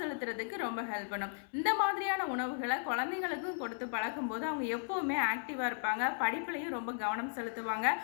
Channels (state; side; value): silent; right; 54 dB below the other